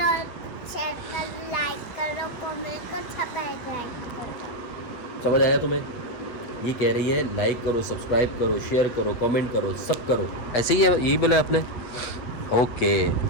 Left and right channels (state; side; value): late; right; 8.2 ms